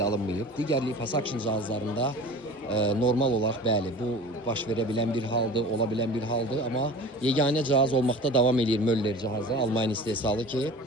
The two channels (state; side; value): normal; both; correlation 0.39